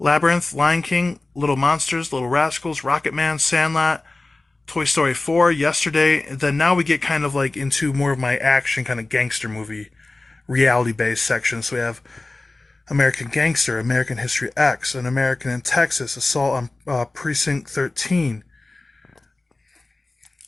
Lion King, Little Monsters, Little Rascals, Rocket Man, Sandlot, Toy Story 4, Yesterday. And then now we get kind of like into more of my action kind of gangster movie, reality-based section. So we have American Gangster, American History X, An American in Texas, Assault on Precinct 13.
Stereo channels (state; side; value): quieter; right; 3.1 dB